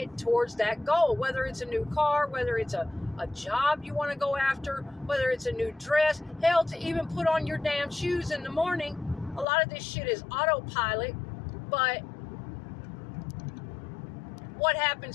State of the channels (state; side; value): drops out; right; at 9.5 s